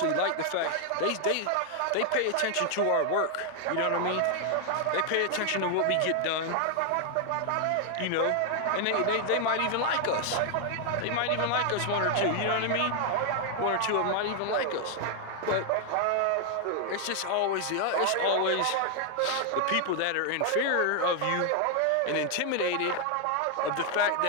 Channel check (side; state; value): both; different; correlation 0.00